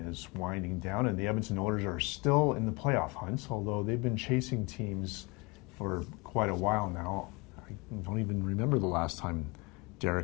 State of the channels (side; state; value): right; quieter; 26.9 dB